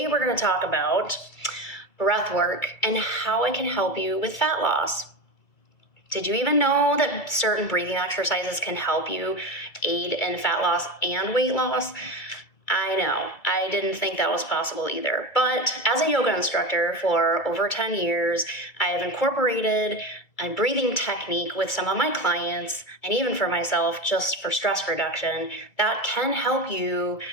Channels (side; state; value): right; late; 2.3 ms